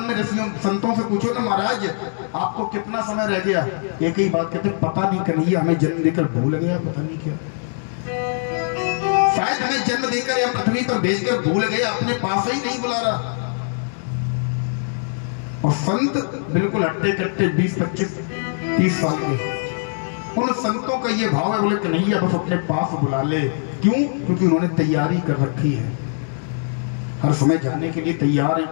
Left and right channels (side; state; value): right; silent; digital silence